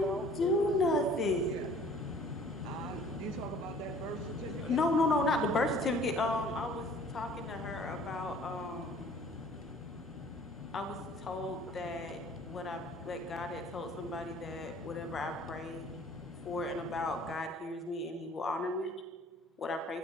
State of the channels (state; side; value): normal; both; correlation 0.52